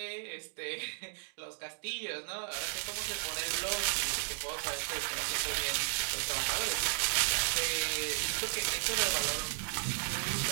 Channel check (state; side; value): silent; left; digital silence